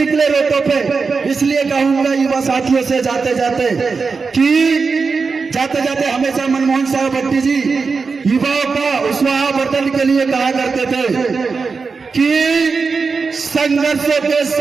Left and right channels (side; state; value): left; quieter; 4.8 dB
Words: रोडों पे। इसलिए कहूंगा युवा साथियों से जाते जाते हमेशा मनमोहन साहब भट्टी जी युवाओं का उत्साहवर्धन के लिए कहा करते थे कि संघर्षों के